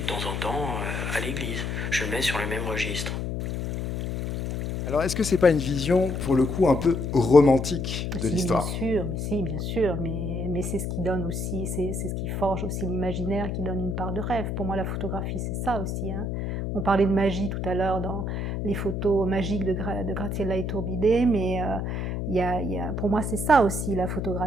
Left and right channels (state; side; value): noise; left; hum, 2 dB below the sound